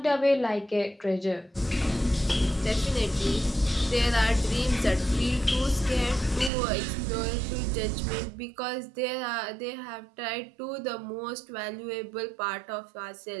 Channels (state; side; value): drops out; left; at 6.5 s